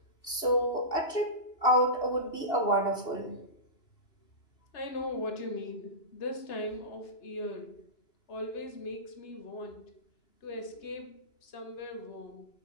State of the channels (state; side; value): late; right; 2.7 ms